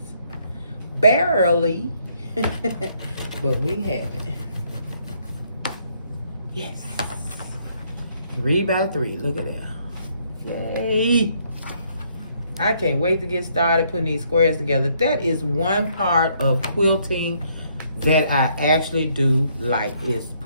Barely, but we have it. Yes. 3x3. Look at that. Yay. I can't wait to get started putting these squares together. That is one part of quilting that I actually do like, is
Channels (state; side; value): inverted; both; correlation -0.69